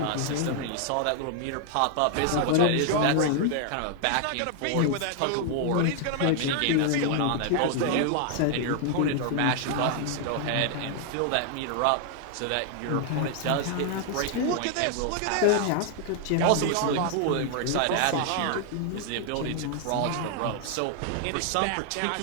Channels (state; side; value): different; both; correlation 0.00